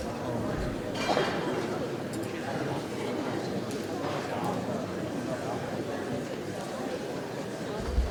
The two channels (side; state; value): both; identical; correlation 1.00